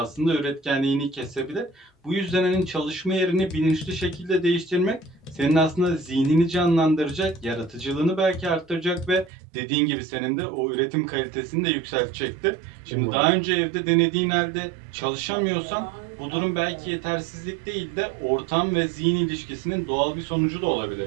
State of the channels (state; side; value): drops out; left; at 9.3 s